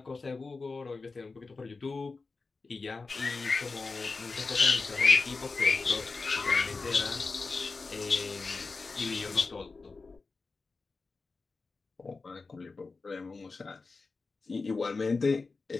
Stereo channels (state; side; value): quieter; right; 4.1 dB